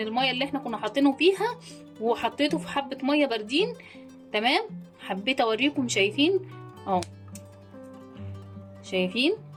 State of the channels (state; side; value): identical; both; correlation 1.00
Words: اللي احنا كنا حاطينه فيها وحطيته في حبه ميه باردين. تمام. حبيت اوريكم، شايفين اهو، شايفين